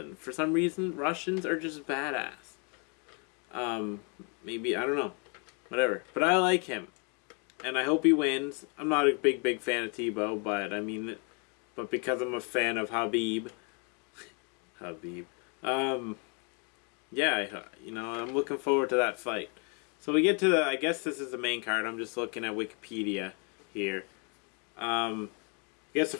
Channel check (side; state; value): right; quieter; 35.9 dB